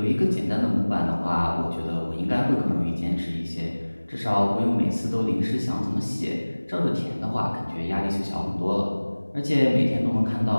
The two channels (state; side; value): inverted; both; correlation -1.00